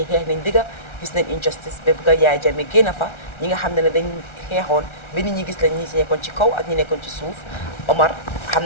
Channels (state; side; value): late; right; 1.3 ms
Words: xeex nañ digga gis nañ injustice ba bëgg a Yaaya Jammeh génn fa ñi nga xam ne dañ xeexoon ba nit ñi gis lañ ñi nekkoon ci kaw ak ñi nekkoon ci suuf Omar xam